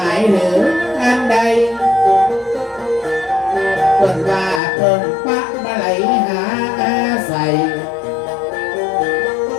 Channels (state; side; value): drops out; right; at 4.6 s